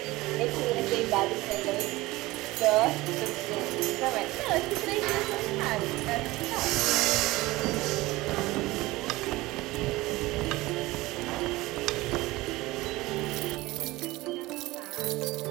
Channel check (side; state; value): left; quieter; 19.7 dB